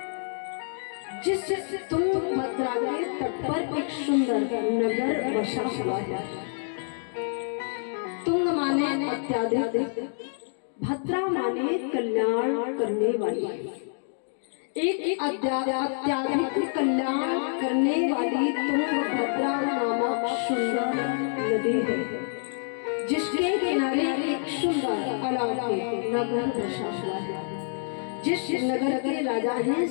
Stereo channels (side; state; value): right; silent; digital silence